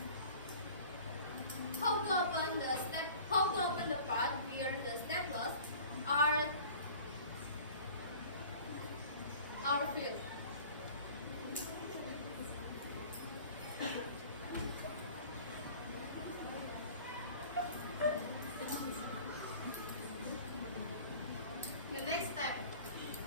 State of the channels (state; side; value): inverted; both; correlation -0.45